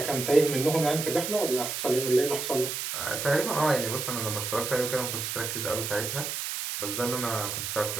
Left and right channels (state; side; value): noise; right; hiss, 4 dB below the sound